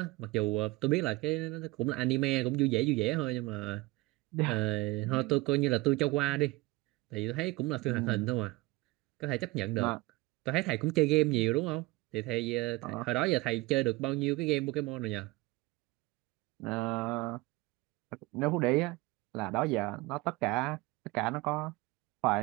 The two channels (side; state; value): left; quieter; 22.2 dB